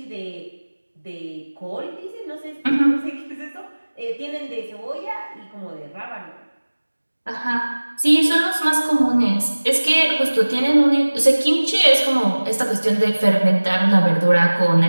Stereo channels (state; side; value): inverted; both; correlation -1.00